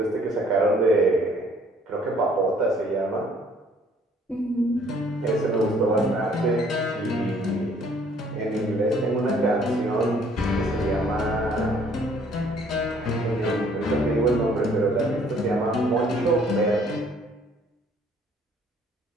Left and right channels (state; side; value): normal; both; correlation 0.60